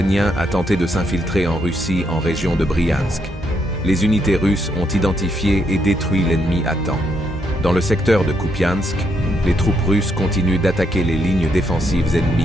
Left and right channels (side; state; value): both; normal; correlation 0.77